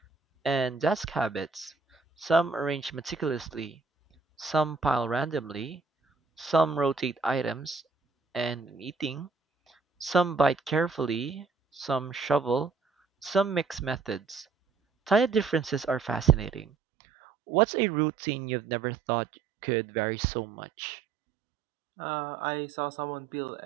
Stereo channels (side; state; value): left; drops out; at 16.7 s